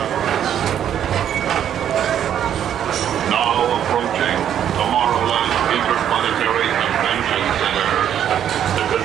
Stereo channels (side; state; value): left; quieter; 9.8 dB